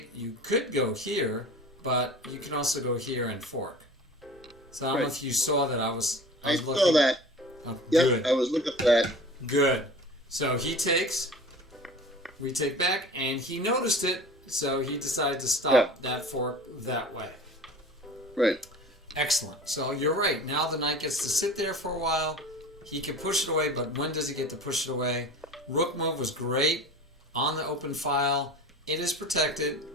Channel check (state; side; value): normal; both; correlation 0.39